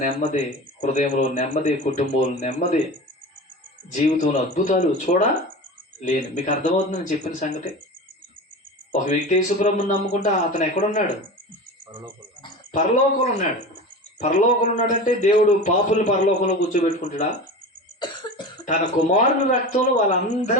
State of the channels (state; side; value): normal; both; correlation 0.31